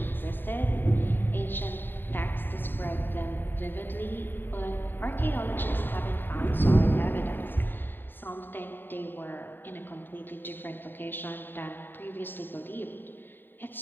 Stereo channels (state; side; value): late; right; 0.094 ms